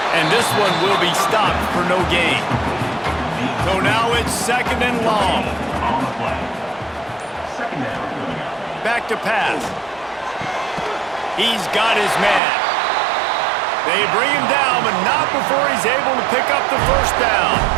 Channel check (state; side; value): drops out; left; at 12.4 s